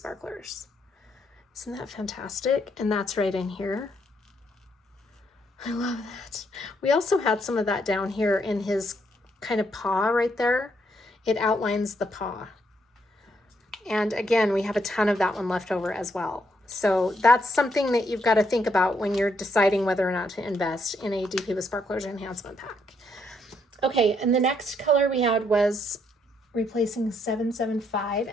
Isn't that fantastic? And that's right in here. I love that. We also had some of that down here in his kind of paw right there. It outlines the paw. And again, we have a ton of that one left over as well. So that's something that you've got to think about when you're deciding whether or not to invest in a DP with Sparklers enhancement pack. Okay, and the next color we had was replacing 775,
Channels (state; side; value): normal; both; correlation 0.74